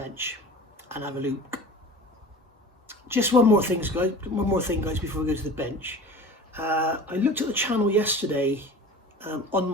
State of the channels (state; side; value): normal; both; correlation 0.39